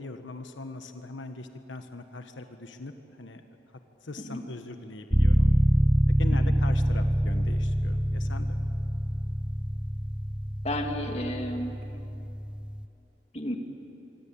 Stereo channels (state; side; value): normal; both; correlation 0.96